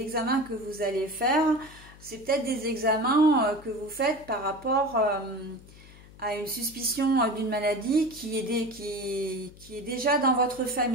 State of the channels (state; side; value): noise; left; hum, 21 dB below the sound